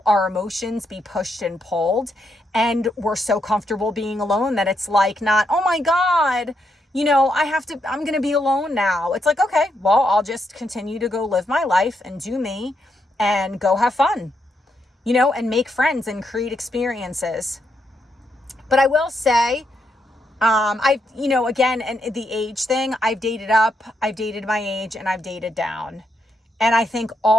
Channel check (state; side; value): normal; both; correlation 0.80